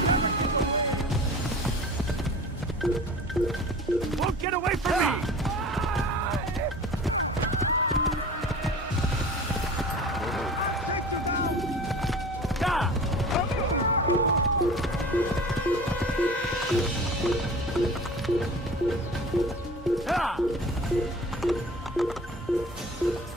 Won't get away from me!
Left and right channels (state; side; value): normal; both; correlation 0.40